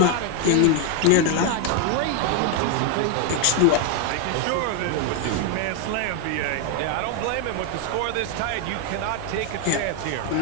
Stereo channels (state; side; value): different; both; correlation 0.01